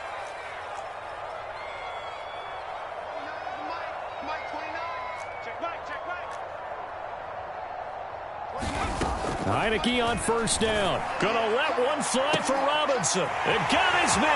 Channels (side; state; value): both; identical; correlation 1.00